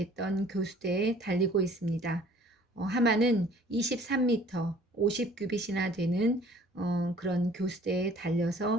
교수대에 달리고 있습니다. 하만은 23m, 50규빗이나 되는 그런 교수대에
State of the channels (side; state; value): both; normal; correlation 0.53